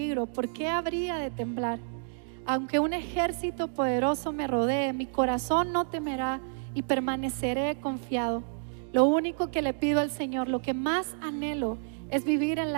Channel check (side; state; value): left; silent; digital silence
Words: ¿por qué habría de temblar? Aunque un ejército poderoso me rodee, mi corazón no temerá y permaneceré confiado. Lo único que le pido al Señor, lo que más anhelo, es vivir en